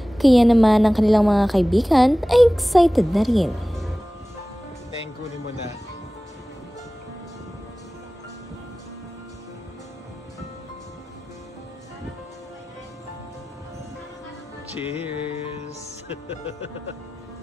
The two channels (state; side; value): normal; both; correlation 0.97